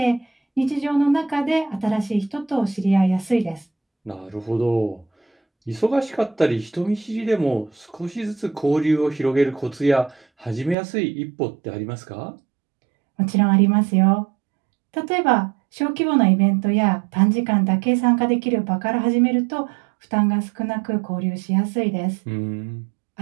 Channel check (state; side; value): drops out; left; at 10.8 s